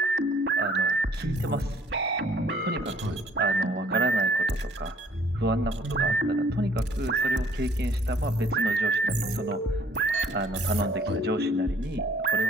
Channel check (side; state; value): both; normal; correlation 0.59